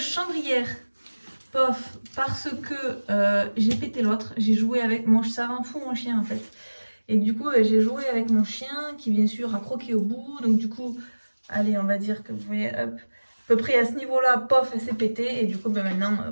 pof parce que j'ai pété l'autre. J'ai joué avec mon, ça rend fou mon chien en fait. Et du coup, j'ai joué avec mon chien qui, bien sûr, a croqué au bout. Donc, du coup, allez, on va dire que vous voyez, hop, à peu près à ce niveau-là, pof, elle s'est pétée. Et du coup, maintenant,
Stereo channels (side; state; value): both; inverted; correlation -1.00